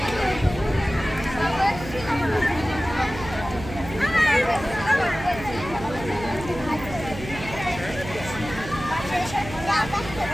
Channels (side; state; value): right; noise; hum, 11 dB below the sound